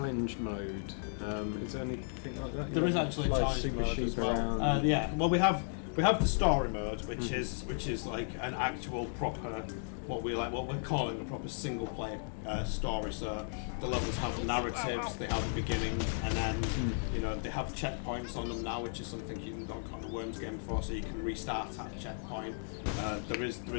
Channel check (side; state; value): right; silent; digital silence